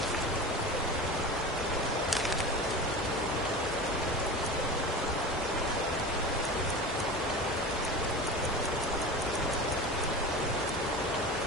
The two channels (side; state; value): both; normal; correlation 0.31